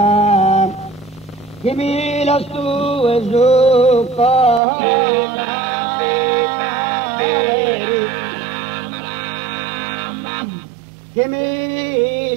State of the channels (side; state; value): left; drops out; at 4.6 s